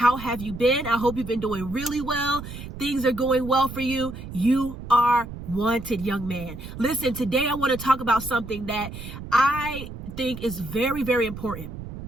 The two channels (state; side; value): noise; right; rumble, 11 dB below the sound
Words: have you been? I hope you've been doing really well. Things are going well for you. You are wanted, young man. Listen, today I want to talk about something that I think is very, very important.